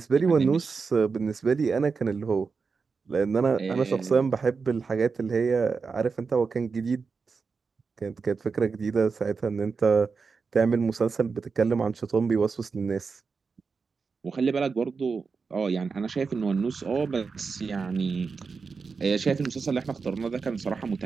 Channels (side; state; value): left; quieter; 5.0 dB